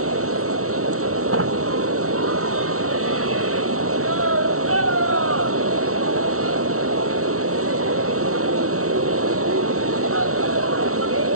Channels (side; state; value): left; late; 0.64 ms